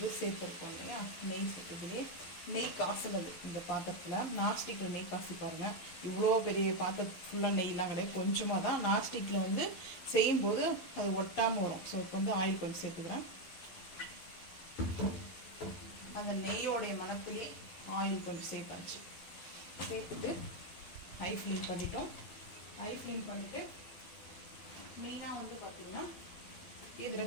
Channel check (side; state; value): right; late; 12 ms